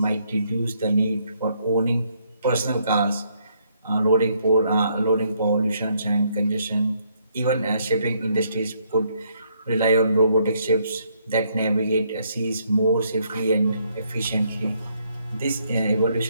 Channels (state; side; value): inverted; both; correlation -0.72